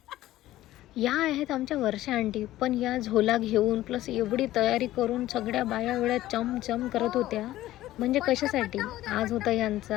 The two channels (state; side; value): quieter; right; 15.1 dB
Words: या आहेत आमच्या वर्षा आंटी. पण या झोला घेऊन प्लस एवढी तयारी करून सगळ्या बाया एवढ्या चमचम करत होत्या. म्हणजे कशासाठी? आज होता